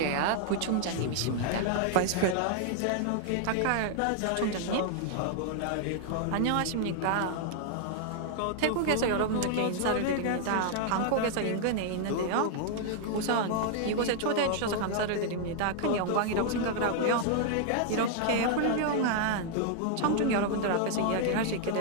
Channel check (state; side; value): different; both; correlation 0.00